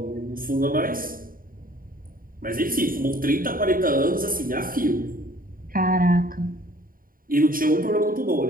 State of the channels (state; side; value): late; left; 0.41 ms